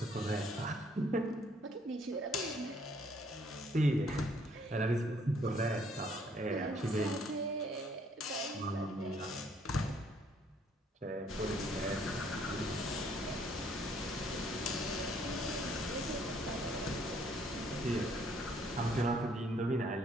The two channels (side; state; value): both; normal; correlation 0.64